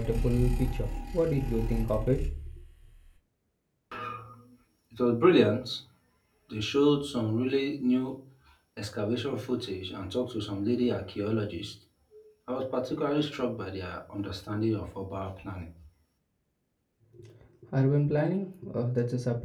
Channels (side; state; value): both; identical; correlation 1.00